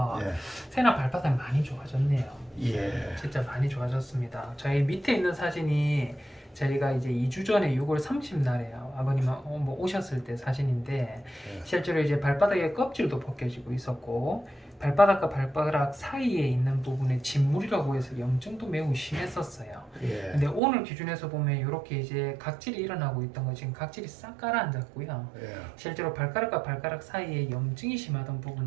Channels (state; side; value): drops out; left; at 20.6 s